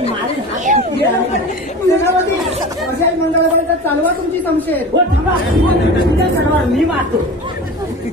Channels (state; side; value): normal; both; correlation 0.33